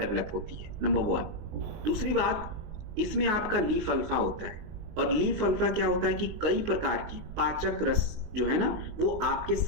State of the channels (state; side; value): late; left; 20 ms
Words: होती है, नंबर 1। दूसरी बात, इसमें आपका लीफ अल्फा होता है, और लीफ अल्फा क्या होता है कि कई प्रकार की पाचक रस जो है ना वो आपके